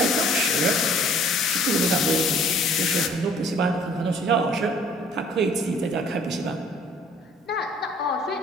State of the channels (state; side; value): normal; both; correlation 0.56